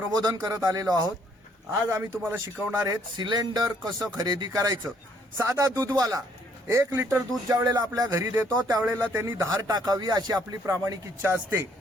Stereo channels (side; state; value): both; normal; correlation 0.66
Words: करत आलेलो आहोत. आज आम्ही तुम्हाला शिकवणार आहेत सिलेंडर कसं खरेदी करायचं. साधा दूधवाला 1 लिटर दूध ज्या वेळेला आपल्या घरी देतो त्यावेळेला त्यांनी धार टाकावी अशी आपली प्रामाणिक इच्छा असते.